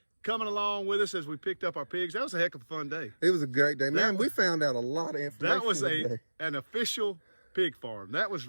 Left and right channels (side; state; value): both; inverted; correlation -1.00